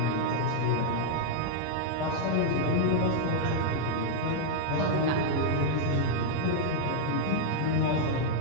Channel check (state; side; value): different; both; correlation -0.01